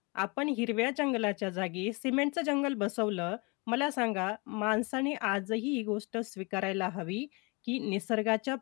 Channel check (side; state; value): right; quieter; 29.3 dB